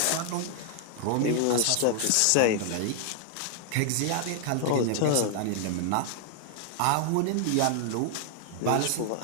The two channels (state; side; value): different; both; correlation 0.00